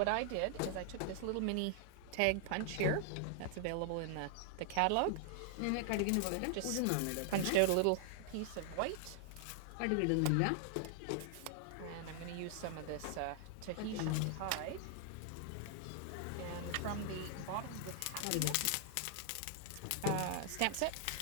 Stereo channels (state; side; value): different; both; correlation 0.00